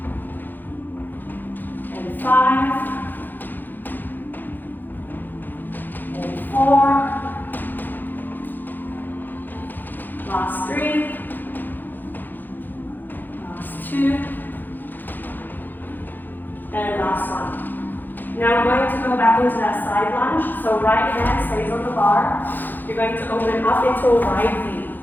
And 5. And 4. Last 3. Last 2. And last one. Now we're going to go back into that side lunge. So right hand stays on the bar. You're going to open up into a wide V.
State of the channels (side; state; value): right; late; 0.088 ms